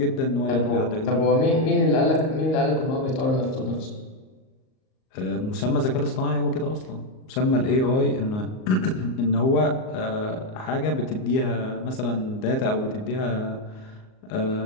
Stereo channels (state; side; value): late; right; 38 ms